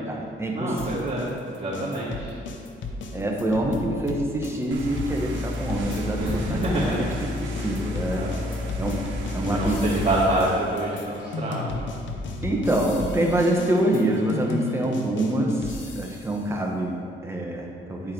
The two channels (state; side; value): normal; both; correlation 0.64